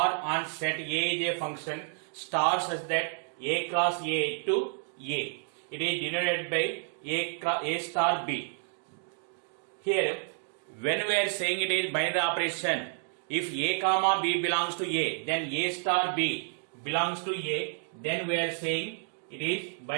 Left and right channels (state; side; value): silent; left; 58 dB below the other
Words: on set A is a function star such that A cross A to A. It is denoted by A star B. Here, when we are saying it is binary operation, if A comma B belongs to A, then A star B belongs to A, then we are saying it is